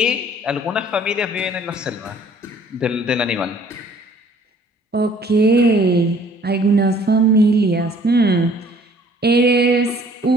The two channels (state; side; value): normal; both; correlation 0.56